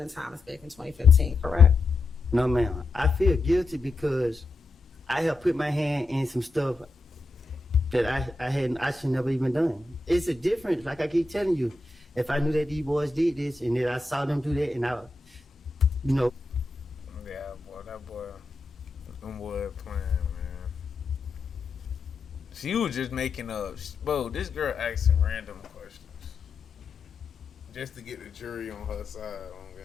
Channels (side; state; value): right; quieter; 3.2 dB